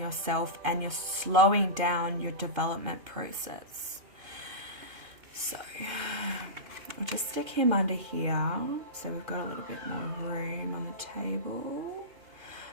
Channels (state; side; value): late; left; 2.8 ms